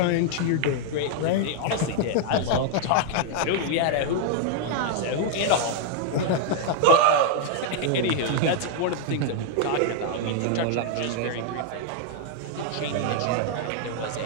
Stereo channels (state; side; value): different; both; correlation 0.00